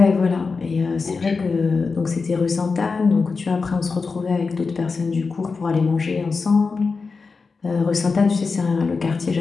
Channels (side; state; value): right; quieter; 4.6 dB